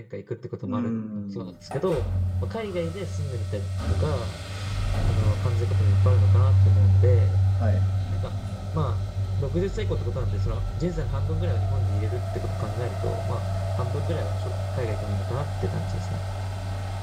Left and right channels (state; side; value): identical; both; correlation 1.00